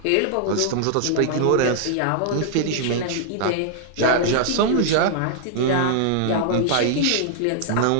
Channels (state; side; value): different; both; correlation -0.01